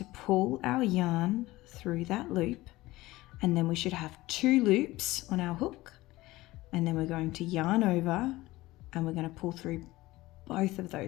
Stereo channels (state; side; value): quieter; right; 18.7 dB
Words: pull our yarn through that loop. And then we should have 2 loops on our hook. And then we're going to yarn over and we're going to pull through both of